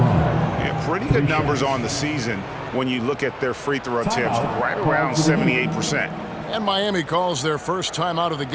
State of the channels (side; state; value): both; identical; correlation 1.00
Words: Yeah, pretty good numbers on the season when you look at their free throw attempts, right around 78%. And Miami calls their first time out of the